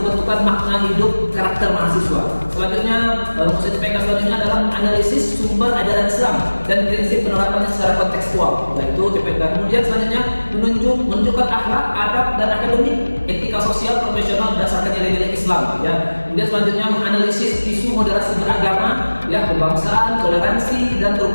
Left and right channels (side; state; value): both; inverted; correlation -1.00